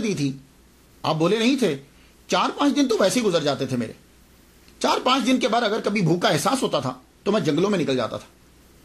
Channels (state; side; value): identical; both; correlation 1.00